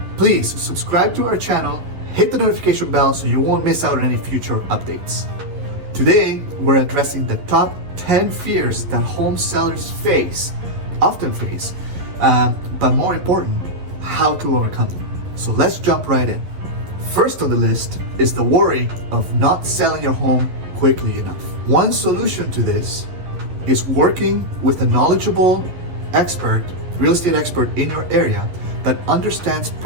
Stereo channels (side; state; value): left; late; 11 ms